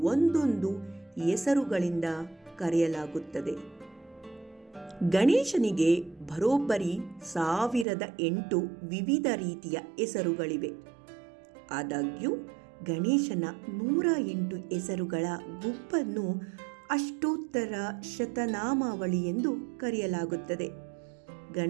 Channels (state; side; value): drops out; left; at 7.9 s